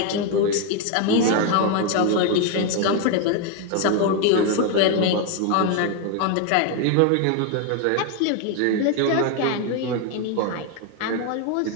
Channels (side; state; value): both; different; correlation 0.01